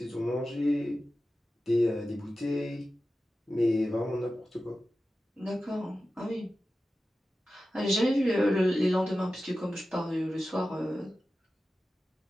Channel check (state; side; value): normal; both; correlation 0.93